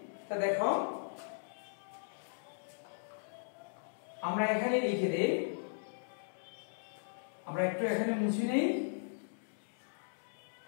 তা দেখো আমরা এখানে লিখে দেই, আমরা একটু এখানে মুছে নেই।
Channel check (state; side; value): silent; right; digital silence